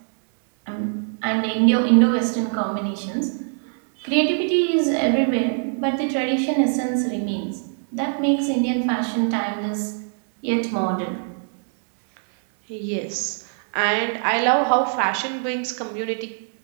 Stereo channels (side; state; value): left; silent; 63 dB below the other